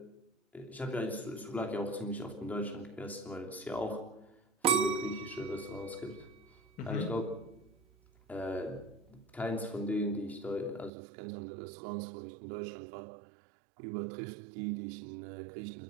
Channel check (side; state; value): left; drops out; at 10.9 s